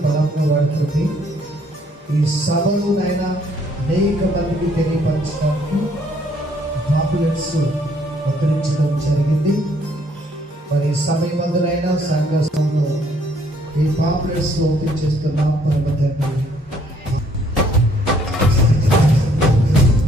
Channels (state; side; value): normal; both; correlation 0.65